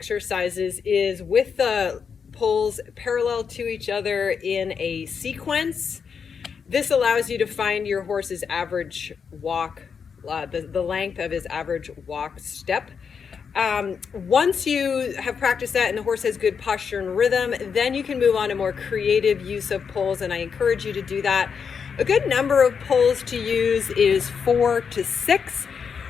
is with the poles parallel to each other in a sequence. This allows you to find your horse's average walk, the length of his average walk step. Once you have practiced that and the horse has good posture and rhythm, then you can move on to more creative use of poles, and I encourage you to do that. A good number of poles to use is 4 to 6.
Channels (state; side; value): quieter; right; 6.4 dB